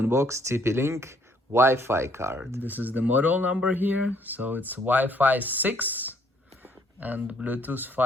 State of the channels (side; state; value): both; normal; correlation 0.65